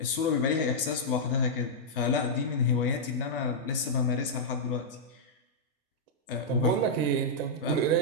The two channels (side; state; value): both; normal; correlation -0.09